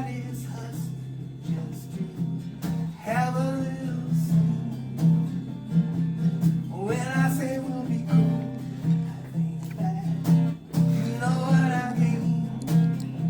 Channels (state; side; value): identical; both; correlation 1.00